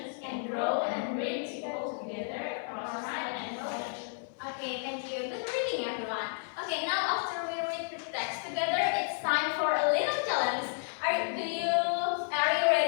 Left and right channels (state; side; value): silent; right; 57 dB below the other